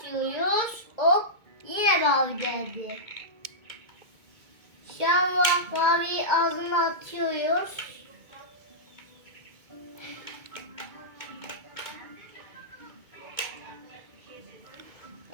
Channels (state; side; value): late; left; 2.2 ms